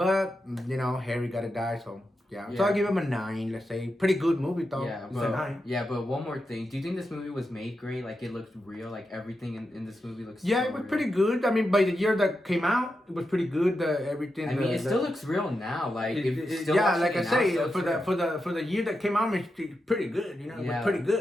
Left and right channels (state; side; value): normal; both; correlation 0.88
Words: Harry gotta die, so. Yeah, so I'll give him a 9, let's say. Pretty good movie, though. Yeah, It's a 9. but one more thing. Do you think this movie was made great? Like, it looked real? Like, everything in this movie looks Yeah, so it was real? pretty good. I mean, by the year that came out, it was pretty good. Everything. I mean, it still looks real now. Like, still yeah, watching like I it now, say, still for the year that came out, it's pretty good. It Yeah. was pretty